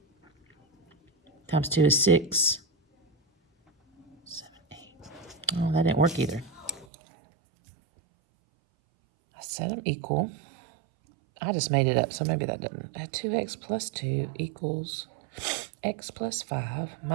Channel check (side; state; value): left; drops out; at 6.9 s